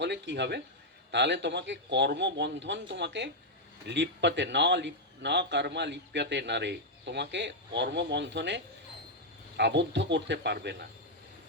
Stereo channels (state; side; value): normal; both; correlation -0.02